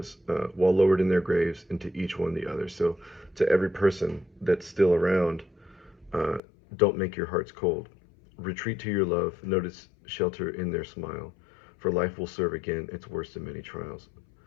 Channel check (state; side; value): drops out; right; at 6.4 s